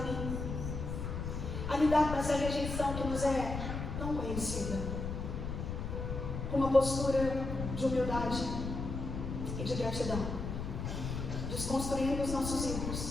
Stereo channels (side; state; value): left; noise; rumble, 4 dB below the sound